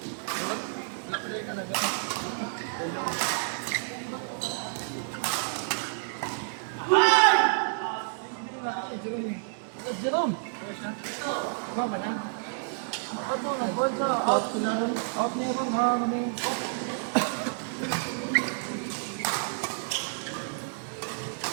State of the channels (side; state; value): left; silent; digital silence